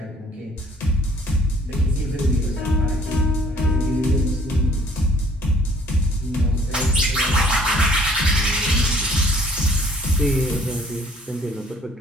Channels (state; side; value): normal; both; correlation 0.57